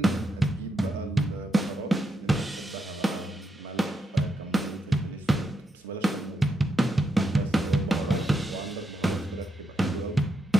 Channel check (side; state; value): both; normal; correlation 0.82